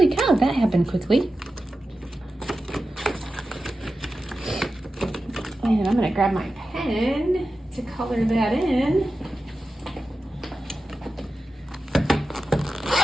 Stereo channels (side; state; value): both; normal; correlation 0.93